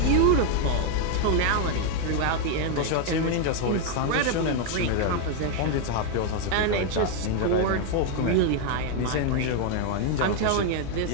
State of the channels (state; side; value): different; both; correlation 0.01